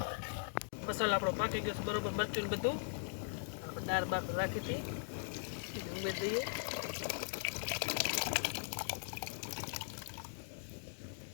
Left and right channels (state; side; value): silent; right; digital silence